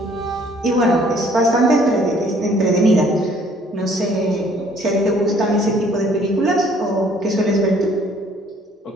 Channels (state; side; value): normal; both; correlation 0.59